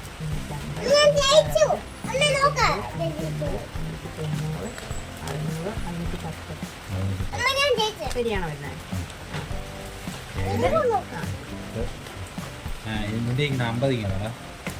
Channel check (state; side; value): identical; both; correlation 1.00